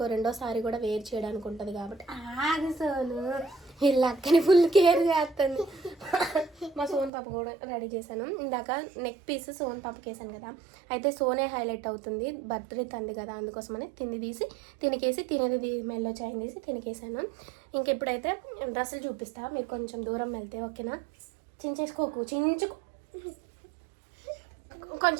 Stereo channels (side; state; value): left; drops out; at 7.1 s